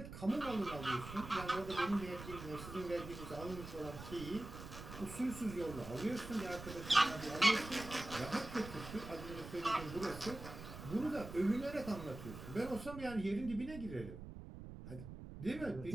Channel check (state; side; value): noise; right; rumble, 11 dB below the sound